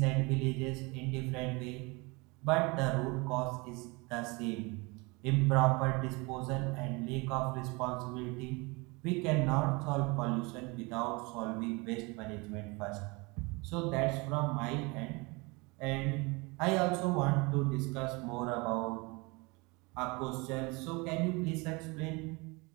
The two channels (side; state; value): left; quieter; 26.8 dB